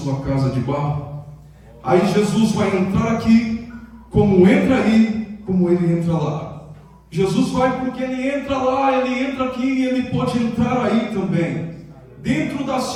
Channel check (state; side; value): identical; both; correlation 1.00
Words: casa de barro? Aí Jesus vai entrar aqui, como entra aí, como ele entra lá. Jesus vai porque ele entra lá, ele entra aqui e ele pode entrar aí também. Dentro da